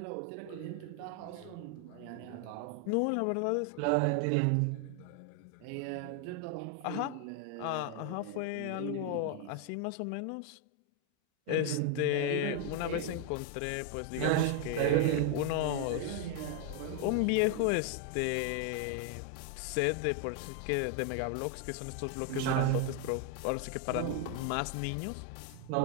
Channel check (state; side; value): different; both; correlation 0.01